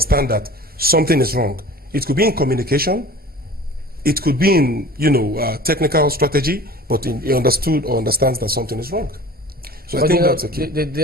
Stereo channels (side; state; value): both; normal; correlation 0.41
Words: that something is wrong. It could be in communication, it could be in technical strategy, but he understood or understands that something is wrong. So I think that's a key.